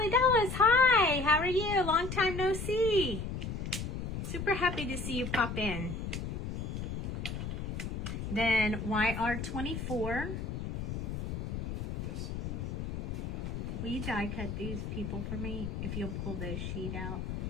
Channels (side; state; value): left; noise; rumble, 4 dB below the sound